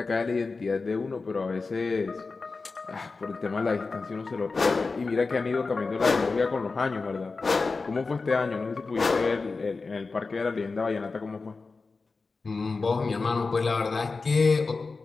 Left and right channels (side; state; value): right; quieter; 4.1 dB